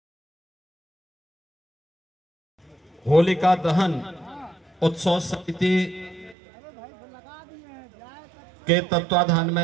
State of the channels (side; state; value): left; drops out; at 6.4 s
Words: होलिका दहन उत्सव समिति के तत्वाधान में